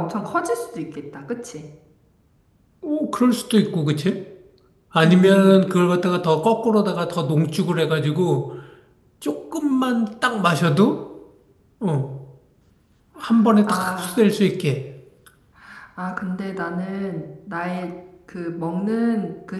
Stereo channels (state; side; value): identical; both; correlation 1.00